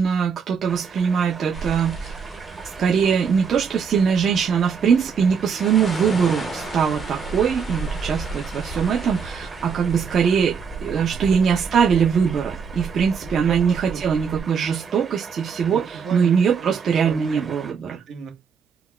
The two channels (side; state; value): left; quieter; 6.3 dB